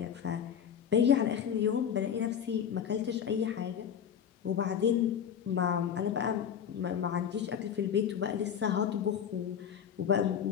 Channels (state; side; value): quieter; right; 8.4 dB